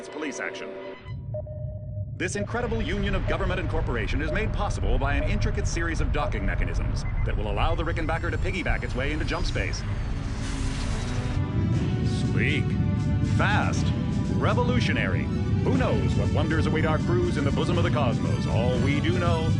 Police action. This incredible union of government and corporation is made possible by an intricate series of docking mechanisms that will allow the Rickenbacker to piggyback its way into jump space. Sleek, fast, revolutionary. Who knows what wonders await our crews in the bosom of the cosmos? All we do know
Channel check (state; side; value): identical; both; correlation 1.00